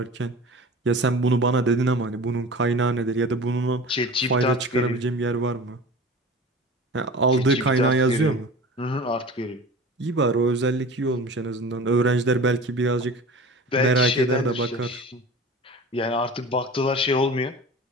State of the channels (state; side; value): normal; both; correlation 0.37